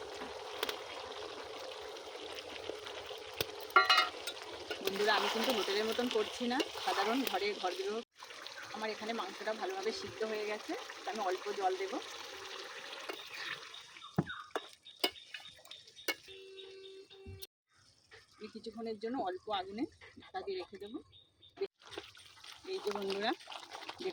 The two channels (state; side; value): identical; both; correlation 1.00